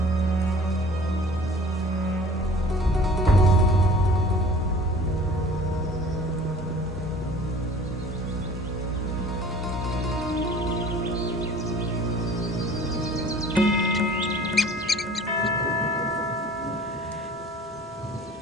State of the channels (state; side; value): normal; both; correlation 0.47